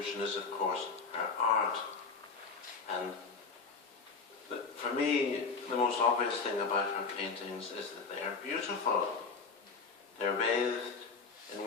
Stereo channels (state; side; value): quieter; right; 4.8 dB